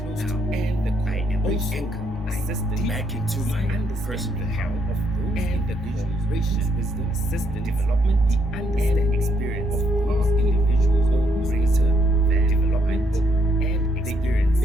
and the I am anchored assistant back into my personal health of those and the cooperation, wisdom, assistant, development, the understanding experience of those individuals or greater than development and experience. The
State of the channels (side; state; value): both; normal; correlation 0.73